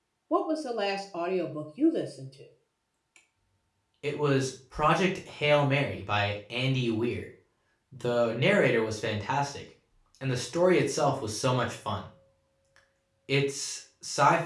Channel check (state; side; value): identical; both; correlation 1.00